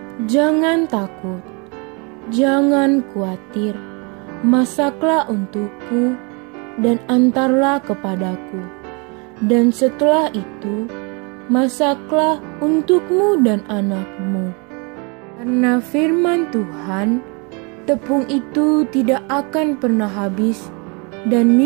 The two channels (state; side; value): quieter; left; 32.3 dB